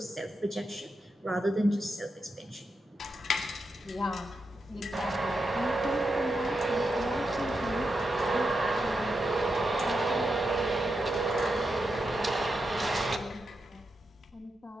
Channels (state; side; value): normal; both; correlation 0.87